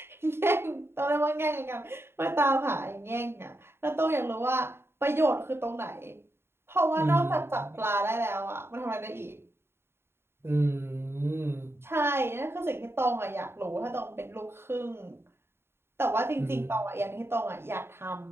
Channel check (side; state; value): left; late; 0.11 ms